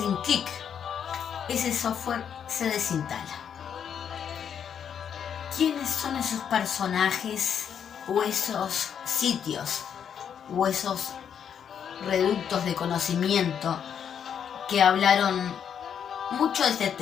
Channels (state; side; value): quieter; right; 8.1 dB